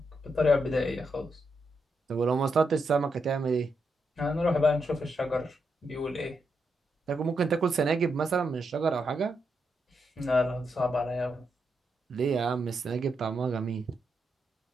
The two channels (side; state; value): both; normal; correlation 0.82